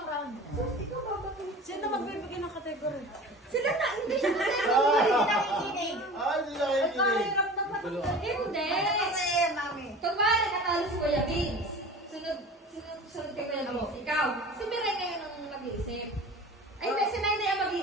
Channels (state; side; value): normal; both; correlation 0.38